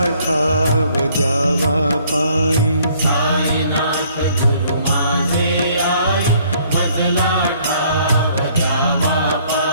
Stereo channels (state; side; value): inverted; both; correlation -0.61